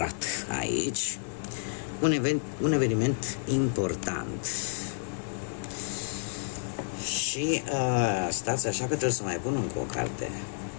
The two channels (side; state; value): right; silent; digital silence